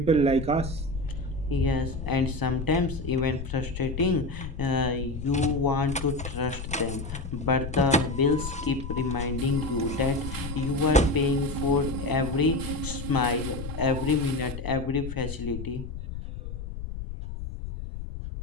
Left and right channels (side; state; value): left; noise; rumble, 8 dB below the sound